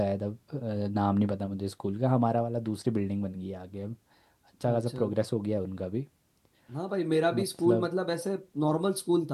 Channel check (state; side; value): identical; both; correlation 1.00